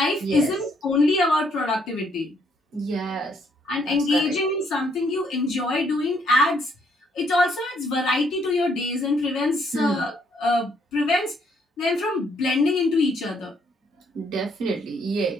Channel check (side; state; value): both; normal; correlation 0.70